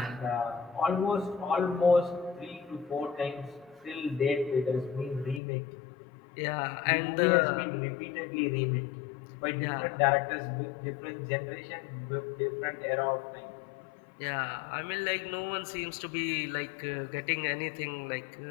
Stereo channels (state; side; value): drops out; right; at 5.4 s